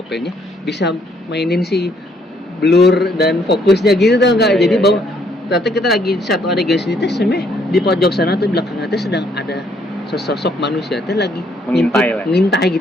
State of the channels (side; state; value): both; normal; correlation 0.68